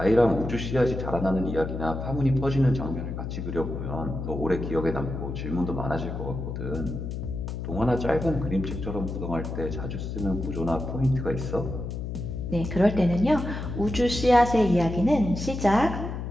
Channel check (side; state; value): left; noise; hum, 5 dB below the sound